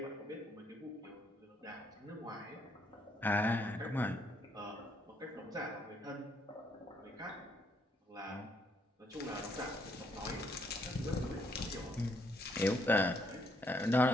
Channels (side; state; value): both; normal; correlation 0.71